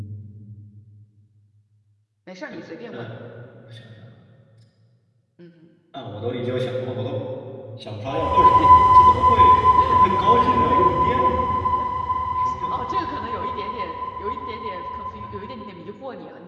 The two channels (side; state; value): both; identical; correlation 1.00